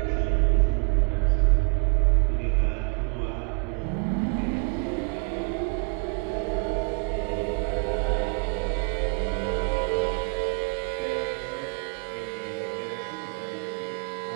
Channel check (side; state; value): left; quieter; 35.4 dB